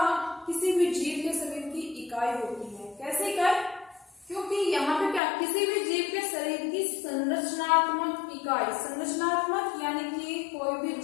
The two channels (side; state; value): right; drops out; at 5.2 s